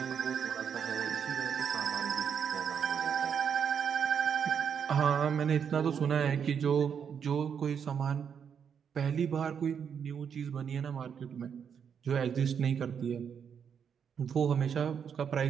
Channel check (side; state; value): left; quieter; 7.4 dB